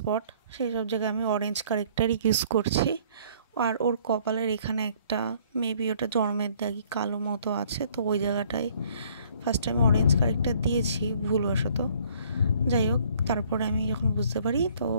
সেই সব জায়গায় আমি অরেঞ্জ কারেক্টার ইউজ করছি। আর ওর কপালের এখানে একটা মেবি ওটা জন্মের দাগি কালো মতো আছে, তো ওই জায়গাটায় ফার্স্টে আমি অরেঞ্জ কারেক্টার দিয়েছি ভুলবশত। যাই হোক, তারপরে আমি যখন বুঝতে পারি তো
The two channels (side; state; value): both; inverted; correlation -0.59